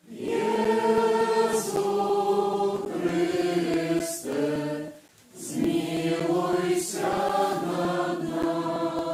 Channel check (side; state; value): both; identical; correlation 1.00